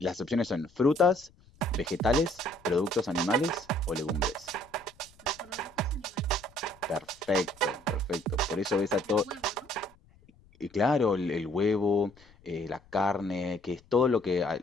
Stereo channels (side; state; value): left; noise; rumble, 27 dB below the sound